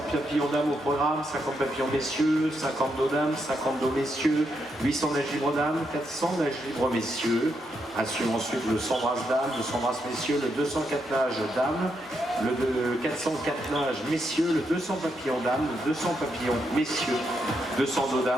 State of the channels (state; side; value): normal; both; correlation 0.80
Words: papillons dames au programme, 50 papillons messieurs, 50 dos dames, 50 dos messieurs, 800 nages libres dames, 400 nages libres messieurs. Assure ensuite le 100 brasses dames, le 100 brasses messieurs, le 204 nages dames, le 404 nages messieurs, le 200 papillons dames, le 200 papillons messieurs, 200 dos